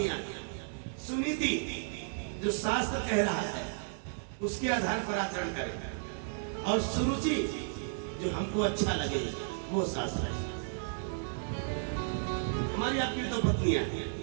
सुनीति जो शास्त्र कह रहा है उसके आधार पर आचरण करें, और सुरुचि जो हमको अच्छा लगे वो शास्त्र है। हमारी आपकी दो पत्नियां,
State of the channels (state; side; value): silent; left; digital silence